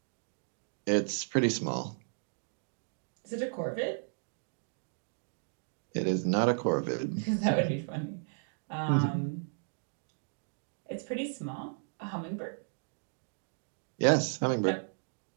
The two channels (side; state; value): left; silent; digital silence